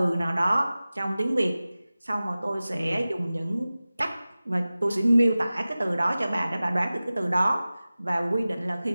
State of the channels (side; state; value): both; inverted; correlation -0.97